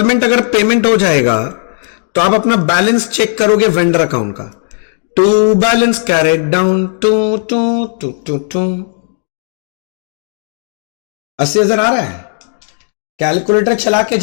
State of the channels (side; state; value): right; silent; digital silence